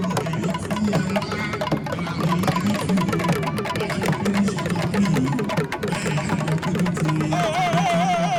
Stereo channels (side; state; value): both; identical; correlation 1.00